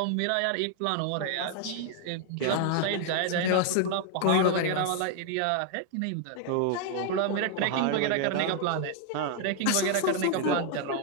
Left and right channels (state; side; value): different; both; correlation 0.00